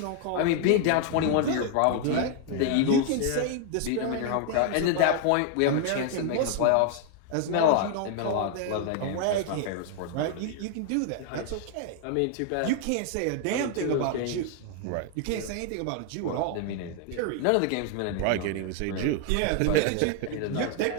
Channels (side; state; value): both; different; correlation 0.00